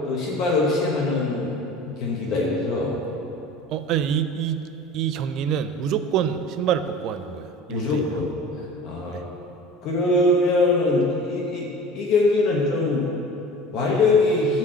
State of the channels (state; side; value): normal; both; correlation 0.39